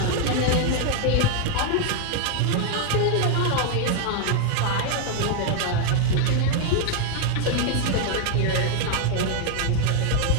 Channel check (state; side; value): different; both; correlation 0.00